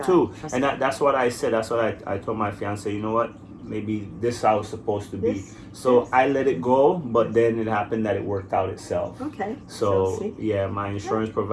And that's what I said. That's what I told my fiance, you know what? Maybe this is how it's supposed to be. So I let it go, but then it happened that it worked out itself. Okay. So yeah, my insurance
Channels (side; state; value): both; identical; correlation 1.00